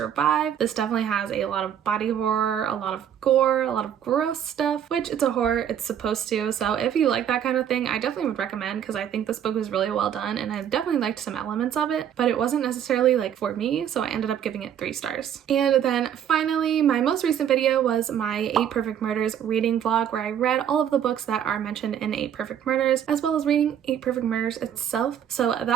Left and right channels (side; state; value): left; quieter; 9.4 dB